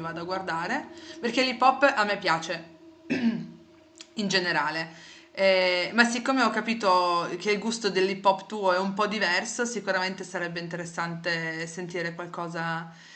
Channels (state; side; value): identical; both; correlation 1.00